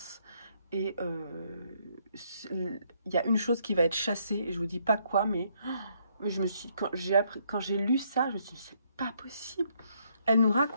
et il y a une chose qui va être chassée, et je vous dis pas quoi, mais quand j'ai lu ça, je me suis dit, c'est pas possible. Elle nous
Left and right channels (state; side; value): inverted; both; correlation -0.71